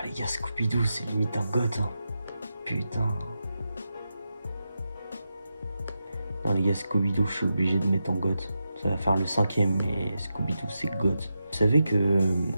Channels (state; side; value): inverted; both; correlation -0.89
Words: les gars, Scooby-Doo c'est limite un goth hein. Putain. Non les gars, Scooby-Doo je suis obligé de mettre en goth. Ça va faire le 5ème, mais Scooby-Doo c'est goth. Vous savez que